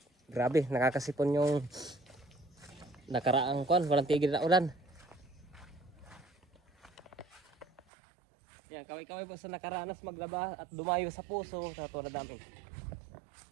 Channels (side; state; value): left; drops out; at 7.8 s